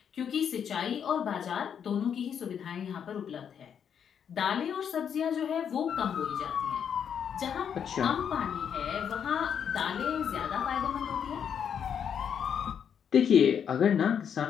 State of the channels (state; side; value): quieter; right; 7.9 dB